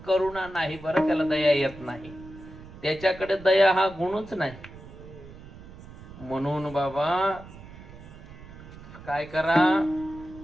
करुणा नाही बरं, त्याला दया येत नाही, त्याच्याकडे दया हा गुणच नाही. म्हणून बाबा काय करा,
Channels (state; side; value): noise; right; rumble, 17 dB below the sound